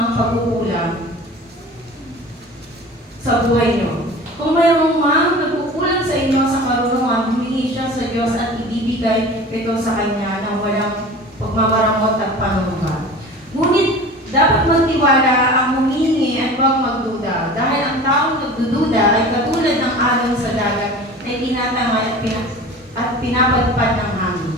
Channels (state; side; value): normal; both; correlation 0.38